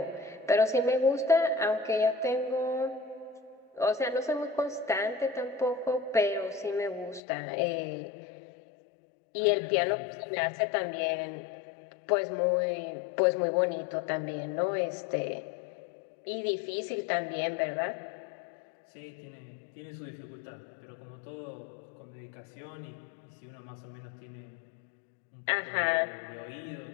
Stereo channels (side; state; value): right; drops out; at 7.2 s